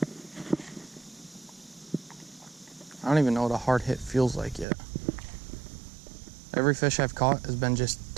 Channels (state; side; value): drops out; left; at 4.7 s